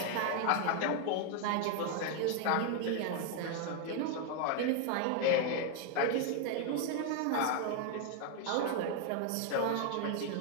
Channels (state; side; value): different; both; correlation 0.00